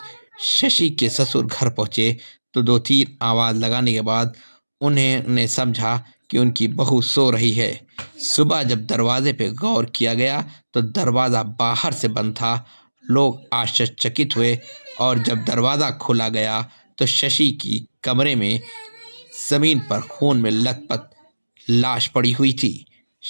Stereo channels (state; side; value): inverted; both; correlation -1.00